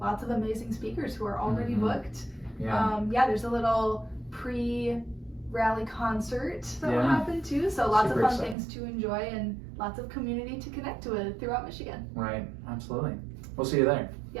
lots of amazing speakers who are already booked. Yeah. There's a little pre-rally concert that will Yeah. happen too. So lots Super of fun exciting. things to enjoy and lots of community to connect with throughout Michigan. Right. Absolutely. We'll see you there.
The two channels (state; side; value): drops out; left; at 8.6 s